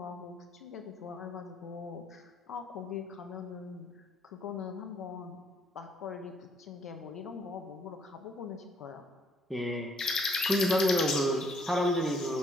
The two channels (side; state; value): both; normal; correlation 0.68